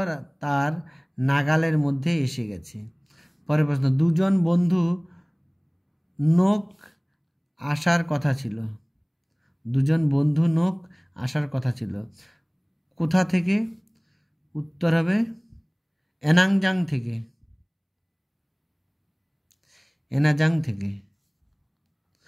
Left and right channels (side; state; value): both; identical; correlation 1.00